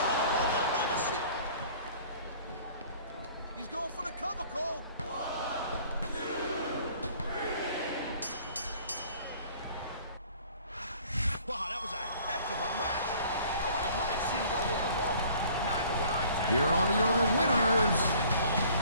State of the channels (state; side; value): inverted; both; correlation -0.53